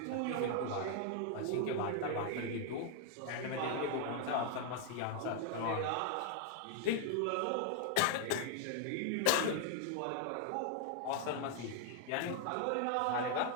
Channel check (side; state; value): both; different; correlation 0.00